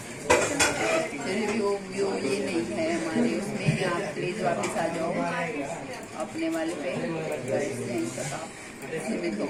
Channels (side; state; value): both; identical; correlation 1.00